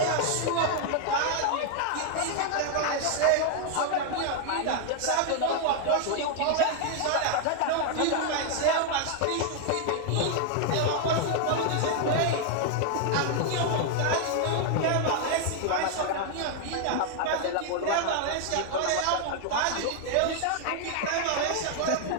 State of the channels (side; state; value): both; different; correlation 0.00